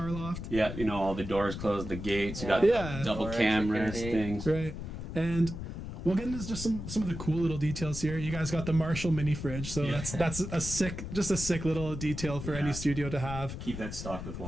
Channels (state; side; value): noise; left; rumble, 7 dB below the sound